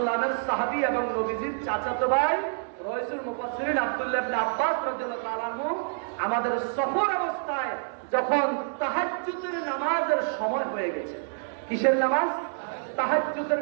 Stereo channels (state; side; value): silent; left; 60 dB below the other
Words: সাহাবী এবং নবীজির চাচাতো ভাই রাইসুল মুফাসসিরিন আব্দুল্লাহ ইবনে আব্বাস রাদিয়াল্লাহু তাআলা আনহু আমাদের সফর অবস্থায় যখন তাহাজ্জুদের নামাজের সময় হয়ে গেছে, কিসের নামাজ? তাহাজ্জুদের